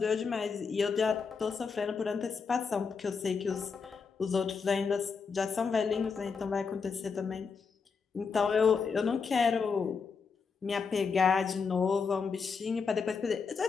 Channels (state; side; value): quieter; right; 5.4 dB